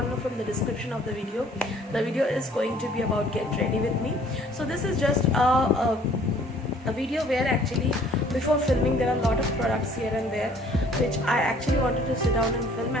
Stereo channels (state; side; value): normal; both; correlation 0.56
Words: know from the description of the video is going to be about get ready with me. So this is just a video where actually before filming there are a lot of products here and there which I actually wanted to sit down and film,